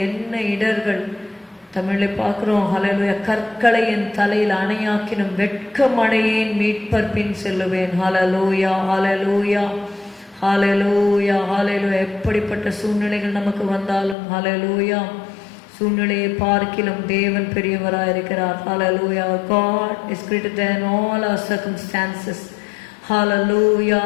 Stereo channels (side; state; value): right; drops out; at 14.2 s